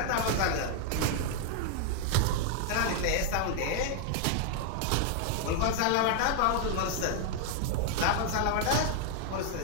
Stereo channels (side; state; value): both; different; correlation 0.00